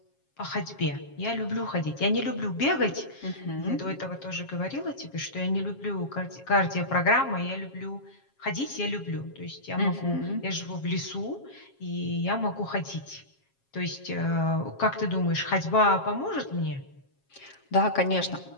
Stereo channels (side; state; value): right; late; 7.4 ms